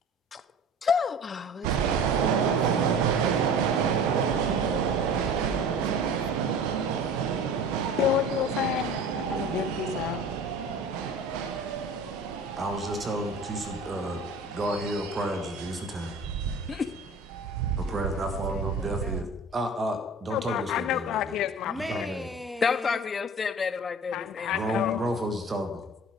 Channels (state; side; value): normal; both; correlation 0.40